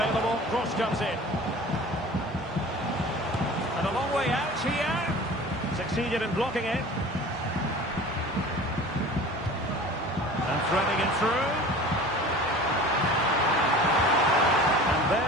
cross comes in. And a long way out here. Succeeded in blocking it. And threading it through. And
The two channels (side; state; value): both; normal; correlation 0.40